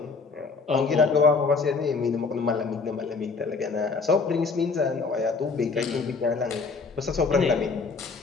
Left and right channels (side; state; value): right; quieter; 4.6 dB